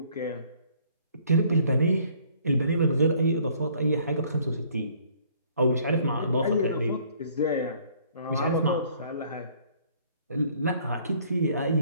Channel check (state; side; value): inverted; both; correlation -0.60